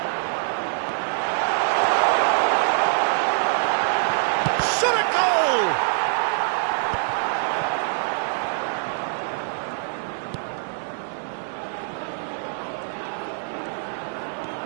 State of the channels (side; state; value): left; silent; digital silence